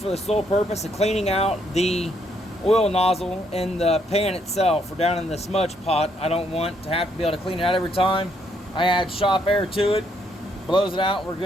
the sole purpose of cleaning out the oil nozzle in the pan itself or down in the smudge pot. I don't want to have to be able to clean it out every time. I add shop air to it, blows it out, we're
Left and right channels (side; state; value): both; normal; correlation 0.72